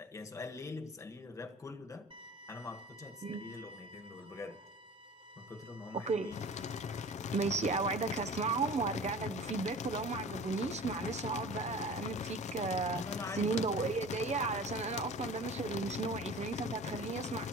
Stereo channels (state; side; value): normal; both; correlation 0.41